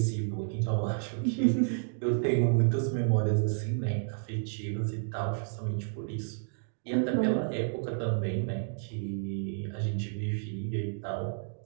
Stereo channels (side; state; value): left; silent; digital silence